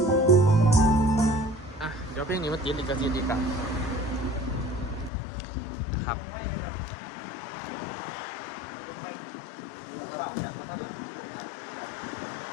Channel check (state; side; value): drops out; right; at 5.1 s